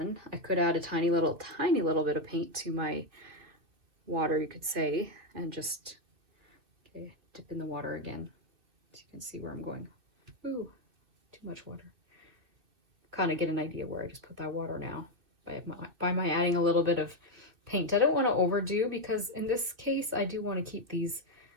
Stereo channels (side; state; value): left; late; 2.8 ms